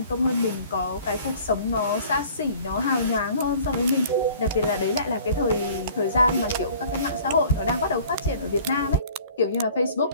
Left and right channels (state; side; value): inverted; both; correlation -0.50